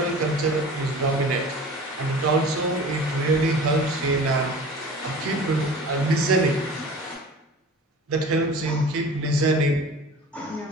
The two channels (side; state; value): both; normal; correlation 0.40